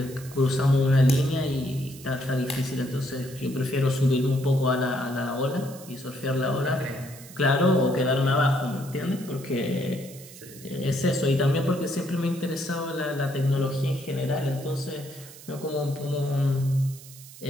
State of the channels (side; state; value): right; noise; hiss, 18 dB below the sound